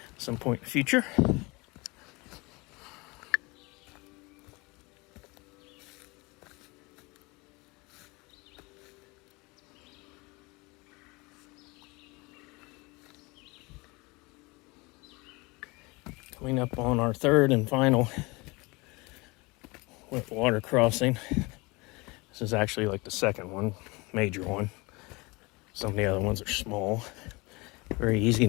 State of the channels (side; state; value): right; quieter; 25.3 dB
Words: at some point in the future. Coming up on our third and final wet water crossing. This is actually like the second one, major one. Some of the other ones are small. Very easy